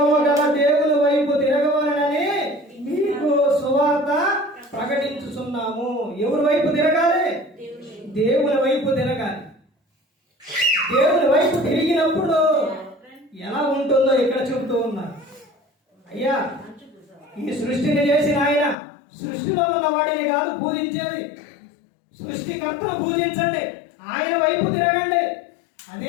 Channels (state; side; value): drops out; right; at 18.8 s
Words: గల దేవుని వైపు తిరగవలనని మీకు సువార్త ప్రకటించుచున్నాము. ఎవరి వైపు తిరగాలి? దేవుని వైపు తిరగాలి. దేవుని వైపు తిరిగినప్పుడు ఎలా ఉంటుందో ఇక్కడ చెబుతూ ఉన్నారు. అయ్యా, ఈ సృష్టిని చేసిన ఆయన సృష్టిలో ఉన్న వాడిని కాదు పూజించేది, సృష్టికర్తను పూజించండి, ఆయన వైపు తిరగండి.